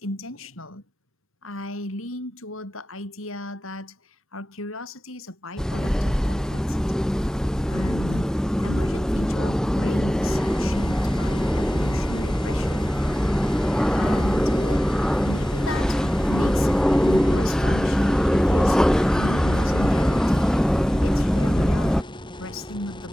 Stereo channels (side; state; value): both; normal; correlation 0.96